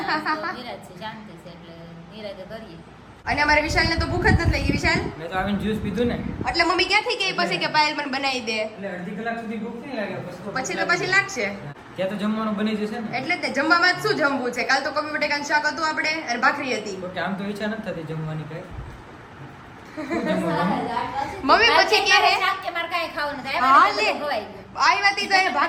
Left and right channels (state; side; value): identical; both; correlation 1.00